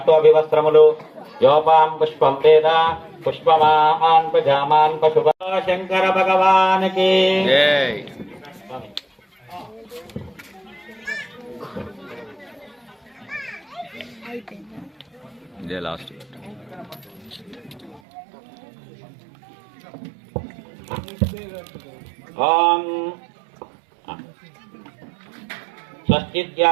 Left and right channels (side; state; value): left; drops out; at 18.0 s